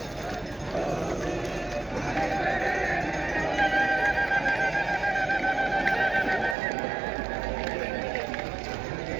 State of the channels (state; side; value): drops out; left; at 6.6 s